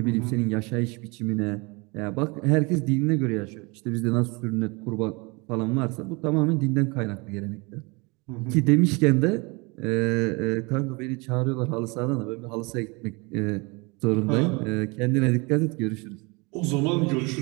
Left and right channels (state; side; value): quieter; left; 27.9 dB